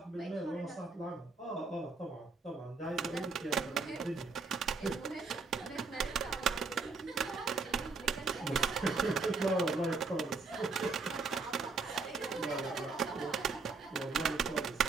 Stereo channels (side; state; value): left; quieter; 4.2 dB